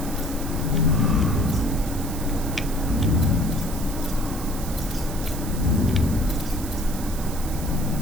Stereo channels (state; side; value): noise; right; hiss, 12 dB below the sound